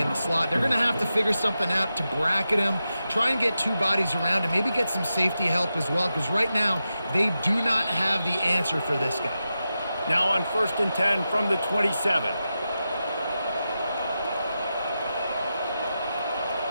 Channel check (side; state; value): both; inverted; correlation -0.90